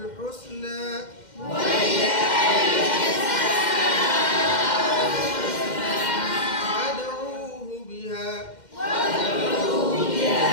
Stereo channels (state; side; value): late; right; 2.1 ms